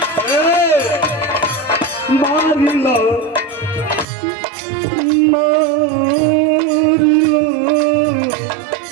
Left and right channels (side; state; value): left; drops out; at 4.0 s